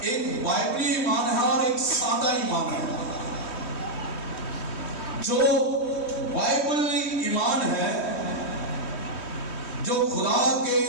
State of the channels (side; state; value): right; late; 3.1 ms